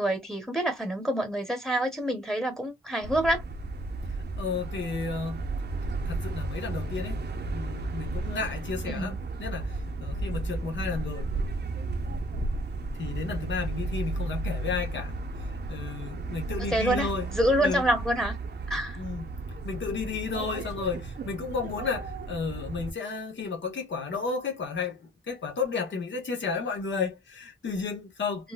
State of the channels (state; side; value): normal; both; correlation 0.58